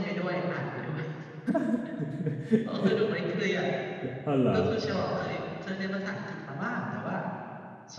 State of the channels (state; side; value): identical; both; correlation 1.00